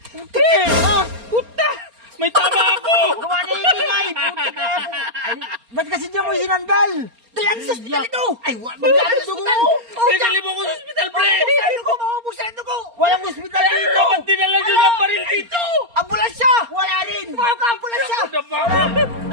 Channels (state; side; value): late; left; 4.3 ms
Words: Puta! May tama ako! Gawa na ingay! Putik na yan! Ay, ba't kasi niya mo sinandal? Dalan sa ospital ito! Ay, magkano dugo mo? Pinali mo ko sa hospital, pre! Maubos ang dugo! Maubos ang dugo! Walang ospital dito! Ba't dinala nyo ng baril dito? Ambulansya! Wala rin! Mga ka-ambulansya!